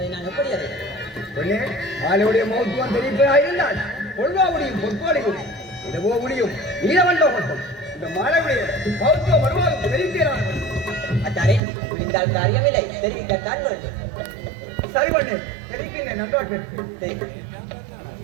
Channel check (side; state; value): left; drops out; at 11.6 s